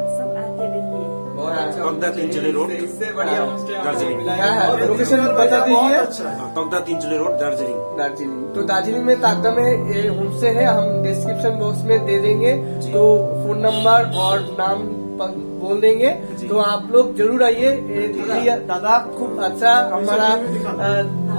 सब आते रहिए। तकदा तीनचले रोड, दार्जिलिंग। लोकेशन बता दीजिए। तकदा तीनचले रोड, दार्जिलिंग। दार्जिलिंग, तो दार्जिलिंग में ताकदा में होमस्टे है, हम डिस्क्रिप्शन बॉक्स में दे देंगे। तो फोन नंबर और नाम बोल देंगे, तो आप लोग जरूर आइए। दीदी दादा खूब अच्छा हमारा।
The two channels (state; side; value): inverted; both; correlation -1.00